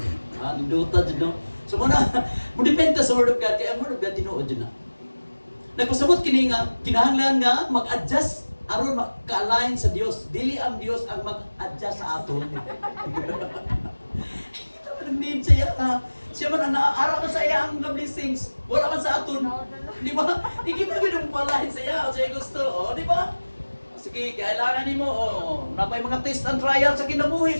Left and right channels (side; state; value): both; inverted; correlation -1.00